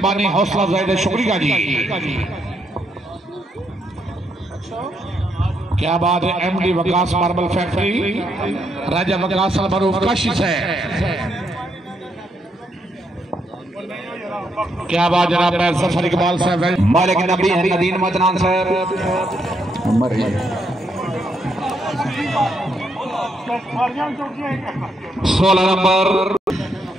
हौसला अफजाई शुक्रिया जी क्या बात है। एमडी वकास मार्बल फैक्ट्री राजा वकास मरूफ काशी साहब क्या बात जनाब सफर इकबाल साहब मालिक नबी नदीन मदनान साहब 16 नंबर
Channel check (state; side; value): normal; both; correlation 0.77